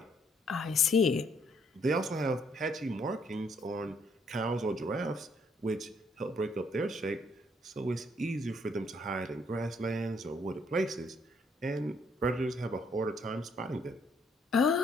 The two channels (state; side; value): normal; both; correlation 0.68